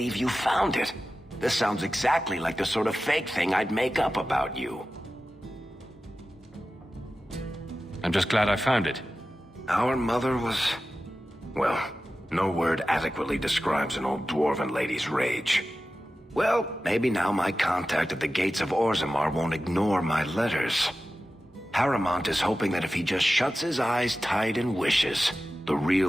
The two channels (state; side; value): normal; both; correlation 0.94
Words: you found it. This sounds exactly like the sort of fake thing I'd make up about you. I'm just glad I found it. Our mother was... well, no word adequately describes an old dwarven lady's rage. Well, maybe now my contact at the gates of Orzammar won't ignore my letters. Harrimont is hoping that if he just shuts his eyes tight and wishes, the